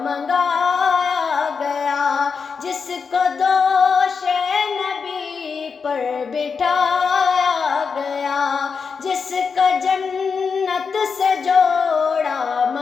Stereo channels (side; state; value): right; quieter; 5.5 dB